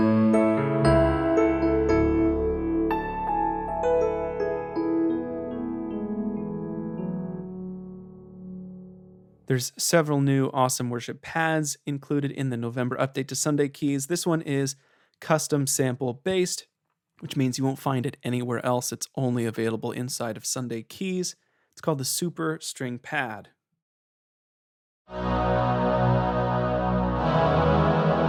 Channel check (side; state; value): both; identical; correlation 1.00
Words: There's several new awesome worship pads included in the November update to Sunday Keys. This one is custom sample based, which means you won't find it anywhere else. It's only available inside of Sunday Keys. It's called the Super String Pad.